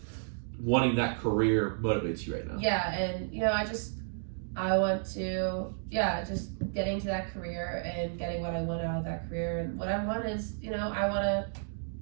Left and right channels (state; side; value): silent; left; digital silence